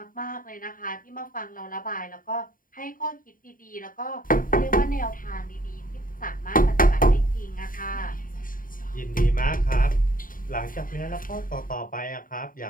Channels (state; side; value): late; right; 0.40 ms